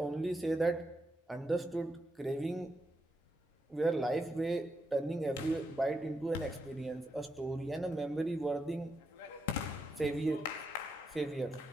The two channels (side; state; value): both; normal; correlation 0.83